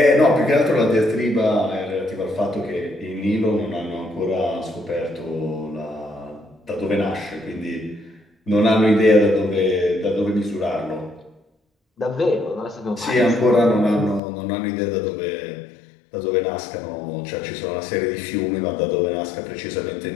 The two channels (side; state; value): right; drops out; at 14.2 s